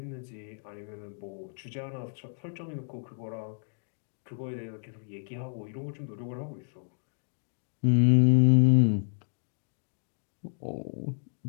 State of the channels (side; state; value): right; silent; digital silence